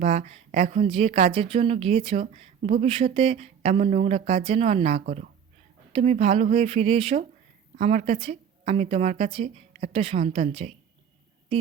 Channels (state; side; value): quieter; left; 7.9 dB